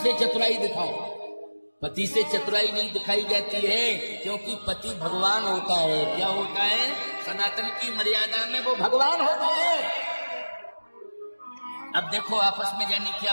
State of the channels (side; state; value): both; inverted; correlation -1.00